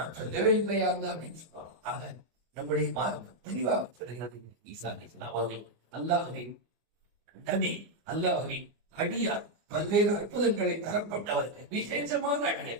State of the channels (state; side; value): late; left; 24 ms